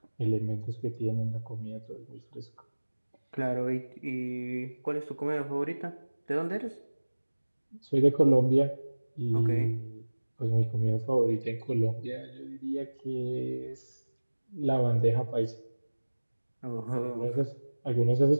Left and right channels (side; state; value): both; inverted; correlation -1.00